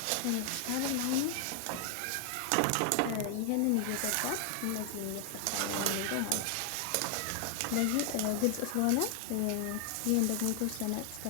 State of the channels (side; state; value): both; different; correlation 0.00